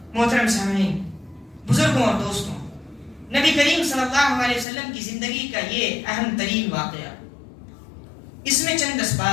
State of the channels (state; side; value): drops out; right; at 4.7 s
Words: محترم سامعین، بزرگوں اور دوستوں، نبی کریم صلی اللہ علیہ وسلم کی زندگی کا یہ اہم ترین واقعہ، اس میں چند